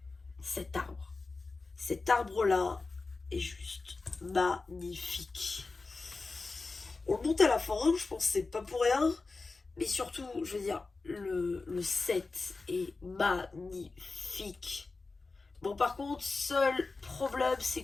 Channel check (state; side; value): quieter; right; 3.8 dB